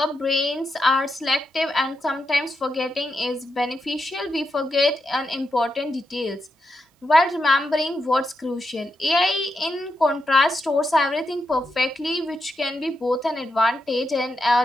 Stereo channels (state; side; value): normal; both; correlation 0.85